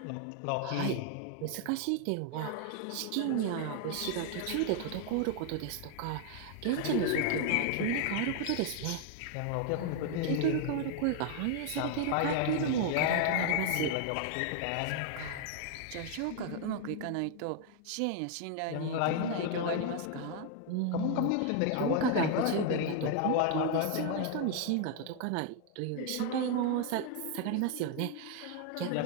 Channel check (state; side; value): different; both; correlation 0.00